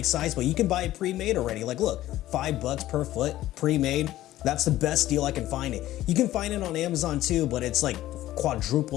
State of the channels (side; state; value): right; quieter; 14.7 dB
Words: size, but you can buy it pre-made already. Like look, $5 per foot, pre-made. That's the best deal I can find it. You can find it on Amazon too, but it's like